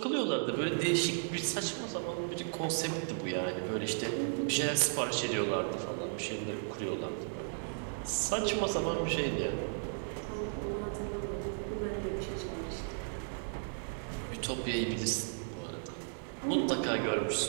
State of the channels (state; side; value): silent; left; digital silence